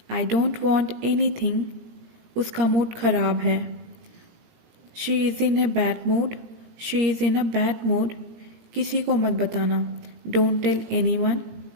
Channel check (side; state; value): left; late; 17 ms